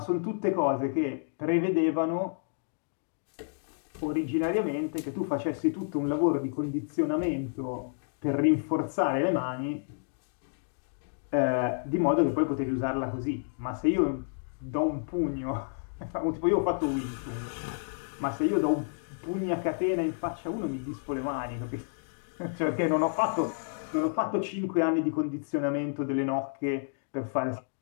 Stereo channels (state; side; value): silent; right; digital silence